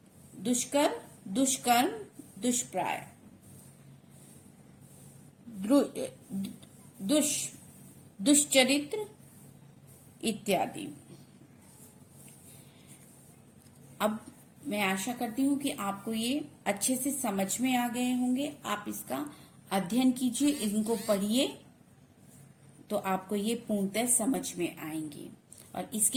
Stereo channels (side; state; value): both; identical; correlation 1.00